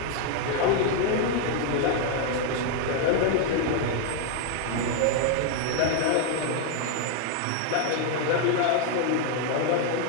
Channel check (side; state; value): both; different; correlation 0.00